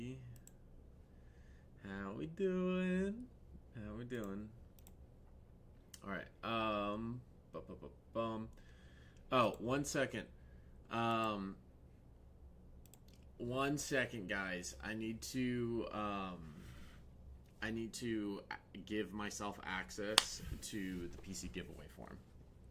How we doing? How we doing? All right. Oh, 1 second. 1 second, guys. I need to give myself access to the PC giveaway form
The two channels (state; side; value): identical; both; correlation 1.00